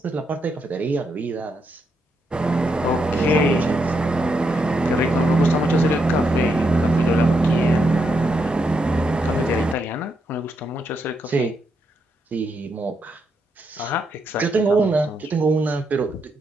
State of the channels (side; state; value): both; normal; correlation 0.80